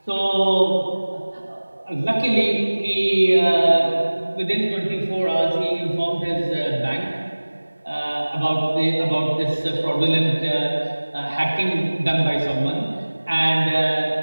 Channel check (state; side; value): inverted; both; correlation -1.00